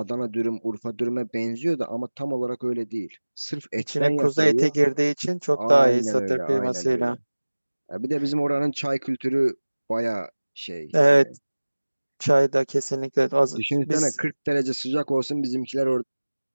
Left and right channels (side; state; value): both; inverted; correlation -1.00